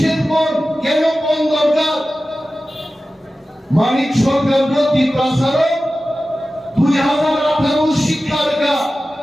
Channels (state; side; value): normal; both; correlation 0.95